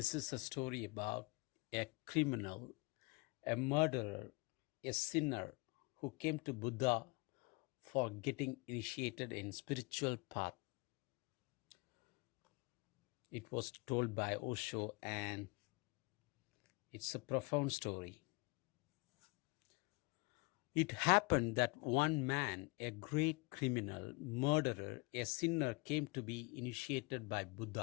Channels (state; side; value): quieter; right; 27.2 dB